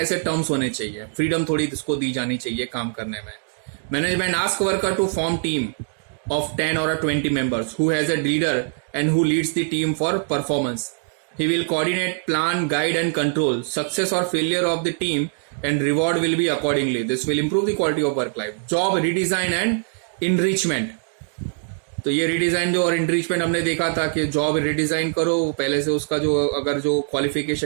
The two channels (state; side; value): silent; left; digital silence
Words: टर्म्स होने चाहिए. फ्रीडम थोड़ी इसको दी जानी चाहिए काम करने में. Management ask worker to form team of 10 or 20 members who has a leader and who leads the team for performance. He will coordinate, plan, guide and control success or failure of the team and reward will be accordingly. This will improve the quality of work life. Job redesign and enrichment. तो ये redesign जो और इंट्रीचमेंट हमने देखा था कि job redesign करो, पहले से उसका जो अगर जो